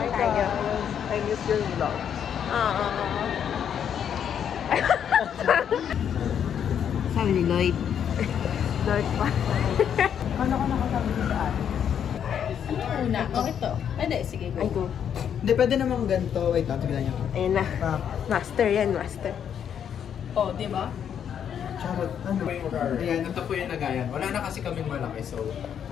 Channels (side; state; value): right; quieter; 8.6 dB